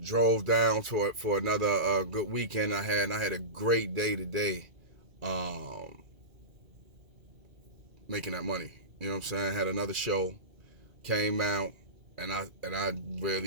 drove down to it for another good weekend I had a great day today, um, making that money. You know what I'm saying? I had another show, came out, and I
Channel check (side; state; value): left; late; 2.4 ms